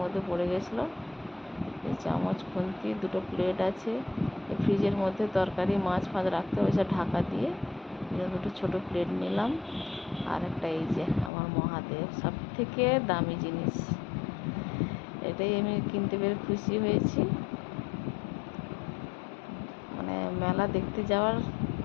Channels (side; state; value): right; drops out; at 11.3 s